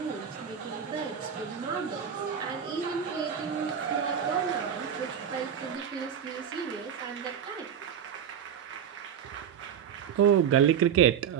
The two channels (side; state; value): left; quieter; 8.3 dB